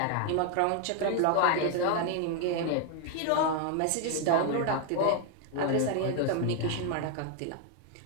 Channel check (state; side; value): different; both; correlation 0.00